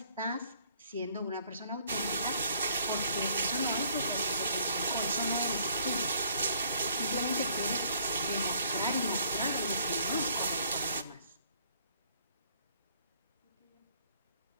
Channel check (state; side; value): inverted; both; correlation -0.62